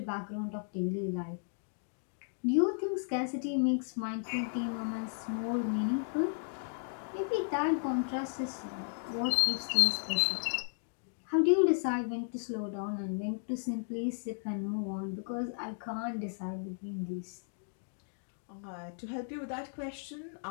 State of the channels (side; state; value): right; silent; digital silence